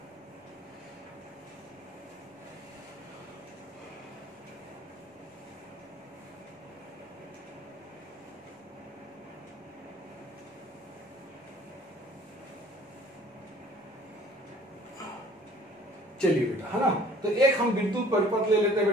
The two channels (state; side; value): normal; both; correlation 0.52